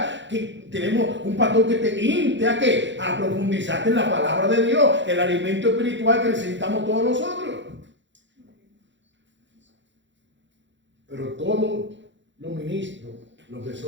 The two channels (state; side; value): late; left; 0.54 ms